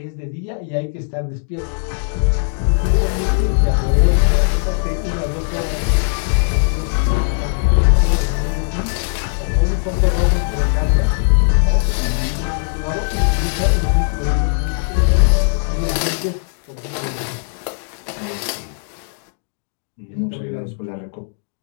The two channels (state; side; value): silent; right; digital silence